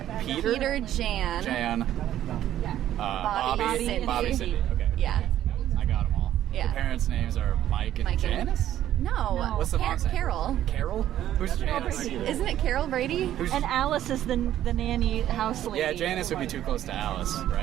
Peter, Jan, Bobby, Cindy. Cindy. Okay. Yeah. I got them all. Yeah. The parents' names are Mike and Mike and- Janice? No. What's the mom's name? Carol. Carol? Who's Janice? Isn't it Carol Brady? Who's And Alice is the nanny house lady. Yeah, Janice would be too close to Alice,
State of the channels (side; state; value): left; quieter; 12.1 dB